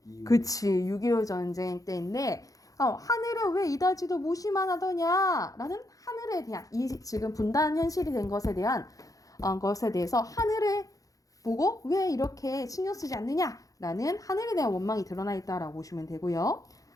그치, 6.25 전쟁 때인데, 하늘은 왜 이다지도 무시만 하더냐? 라는 하늘에 대한, 이 지금 분단 현실이 된 것에 대해서 하늘에 보고 왜 이렇게 신경 쓰지 않느냐? 라는 하늘에 대한 원망이 드러나 있다라고 보시면 되고요.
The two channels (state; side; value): late; right; 0.17 ms